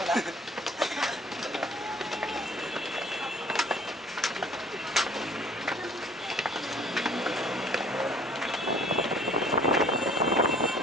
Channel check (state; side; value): normal; both; correlation 0.52